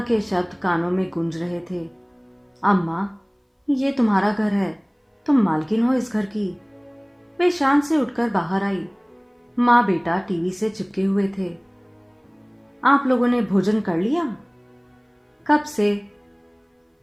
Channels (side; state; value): both; identical; correlation 1.00